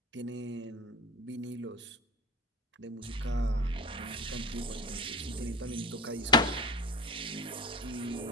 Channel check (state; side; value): normal; both; correlation 0.32